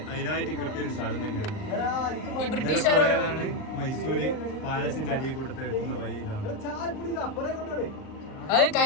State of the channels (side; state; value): right; late; 38 ms